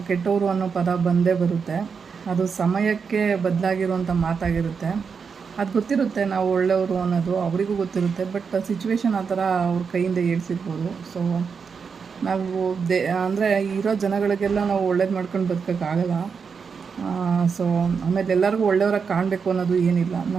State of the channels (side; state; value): left; quieter; 5.9 dB